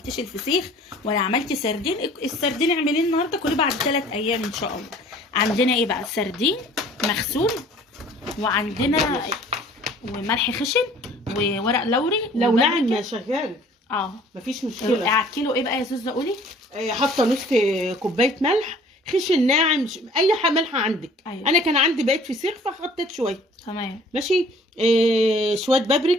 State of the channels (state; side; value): normal; both; correlation 0.52